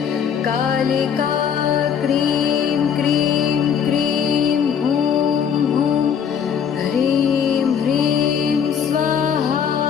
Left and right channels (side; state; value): right; quieter; 7.6 dB